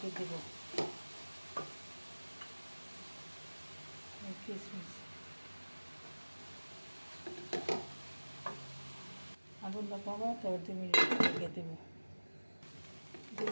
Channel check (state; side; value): inverted; both; correlation -1.00